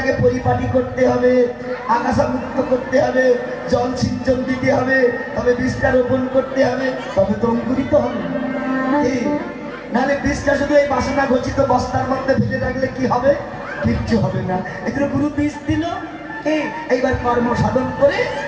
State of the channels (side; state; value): both; identical; correlation 1.00